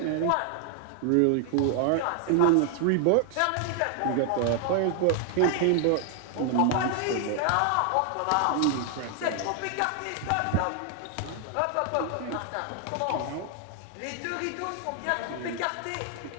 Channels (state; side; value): different; both; correlation 0.00